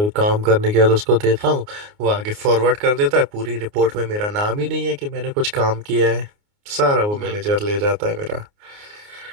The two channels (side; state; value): left; late; 29 ms